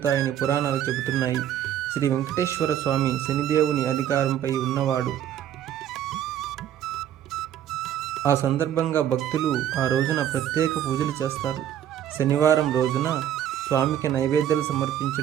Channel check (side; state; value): left; quieter; 10.6 dB